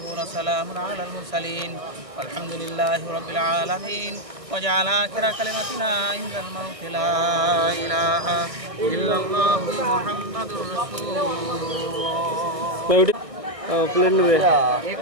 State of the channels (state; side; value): late; left; 1.5 ms